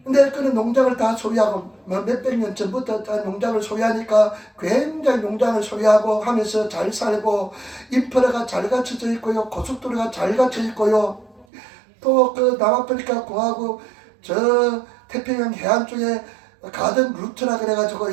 근데 그런 농장을 다 소유하고 몇백 년 전부터 다 농장을 소유하니까 굉장히 농장을 소유하고 하면서 잘 살고 인프라가 잘 갖춰져 있고요. 고속도로가 잘 갖춰져 있고요. 또 그 남아프리카 공화국 저 태평양 해안 쪽에 가든 루트라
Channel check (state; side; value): drops out; left; at 11.5 s